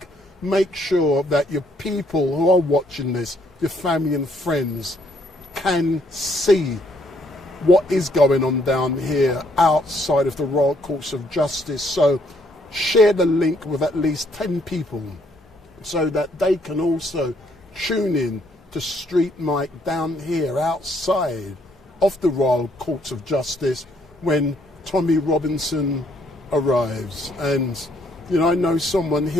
Make sure that your people who are watching this, your family and friends, can see what is going on down here outside of the Royal Courts of Justice. So share the link with at least 10 people so that they can also tune in to StreetMic down here outside of the Royal Courts of Justice when Tommy Robinson arrives. And, you know, I know someone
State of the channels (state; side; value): normal; both; correlation 0.69